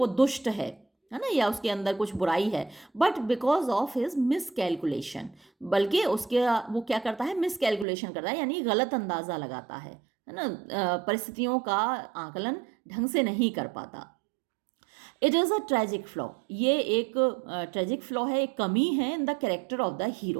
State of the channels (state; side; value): drops out; left; at 7.9 s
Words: दुष्ट है ना, या उसके अंदर कुछ बुराई है, but because of his miss calculation, बल्कि उसके वो क्या करता है, मिस कैलकुलेशन करता है, यानी गलत अंदाज़ा लगाता है ना, परिस्थितियों का आकलन ढंग से नहीं कर पाता। It is a tragic flaw, ये एक ट्रेजिक फ्लॉ है, एक कमी है in the character of the